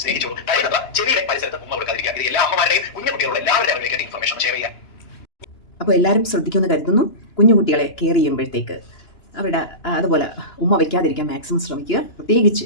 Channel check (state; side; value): late; right; 2.9 ms